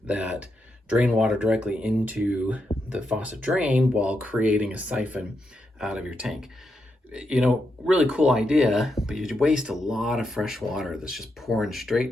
that drain water directly into the faucet drain while creating a siphon out of your tank. You know, really cool idea, but you waste a lot of fresh water that's just pouring straight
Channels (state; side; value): normal; both; correlation 0.83